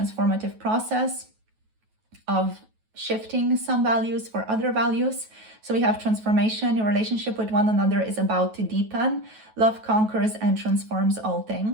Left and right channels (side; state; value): left; late; 9.2 ms